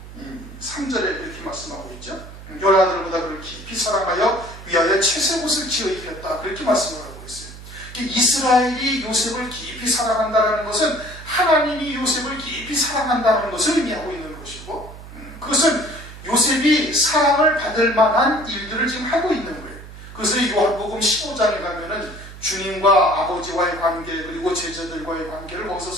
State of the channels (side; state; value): right; noise; hum, 15 dB below the sound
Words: 3절에 이렇게 말씀하고 있죠. 열아들보다 그를 깊이 사랑하여 위하여 채색옷을 지어 입혔다. 그렇게 말씀을 하고 있어요. 이스라엘이 요셉을 깊이 사랑한다는 것은 하나님이 요셉을 깊이 사랑한다는 것을 의미하고 있는 것이고, 그것은 요셉이 사랑을 받을 만한 일들을 지금 하고 있는 거예요. 그래서 요한복음 15장에 가면은 주님과 아버지와의 관계, 그리고 제자들과의 관계를 거기서